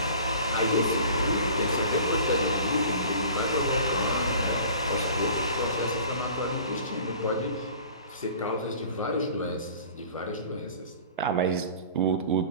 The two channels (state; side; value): inverted; both; correlation -0.44